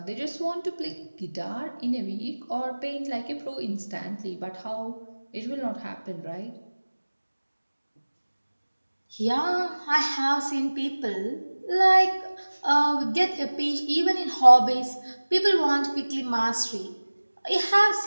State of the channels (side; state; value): both; inverted; correlation -1.00